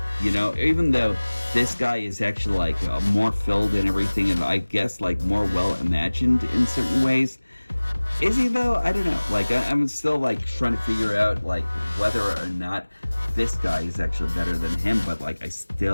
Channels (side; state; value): both; inverted; correlation -1.00